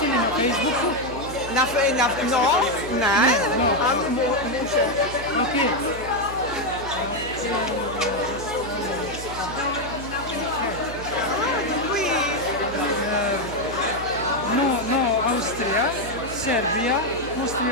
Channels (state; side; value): noise; right; hum, 12 dB below the sound